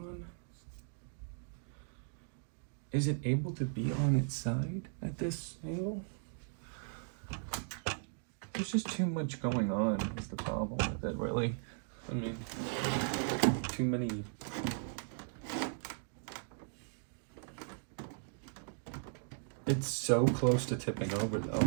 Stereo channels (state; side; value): silent; left; digital silence